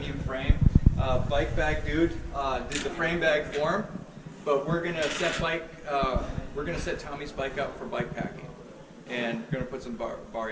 frame. Bike bag dude did the frame bag for him, but we're gonna set Tommy's bike up for bike packing, and we're gonna put some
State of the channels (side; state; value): both; identical; correlation 1.00